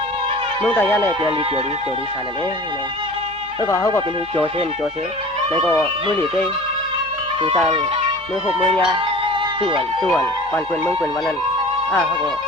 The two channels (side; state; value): both; normal; correlation 0.40